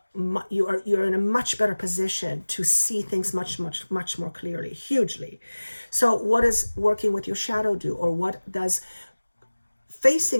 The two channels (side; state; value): both; inverted; correlation -1.00